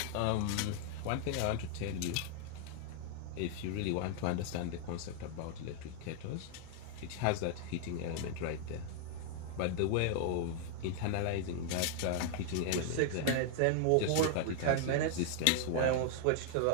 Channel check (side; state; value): both; different; correlation 0.00